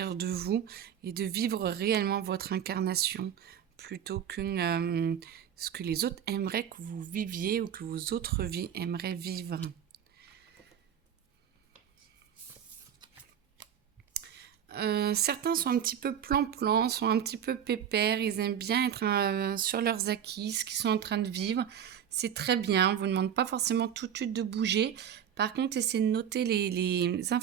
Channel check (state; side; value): quieter; left; 9.1 dB